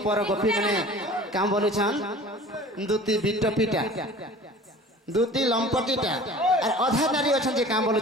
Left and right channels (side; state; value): both; normal; correlation 0.43